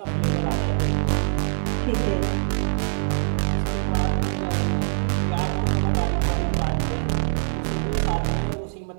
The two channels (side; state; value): left; silent; digital silence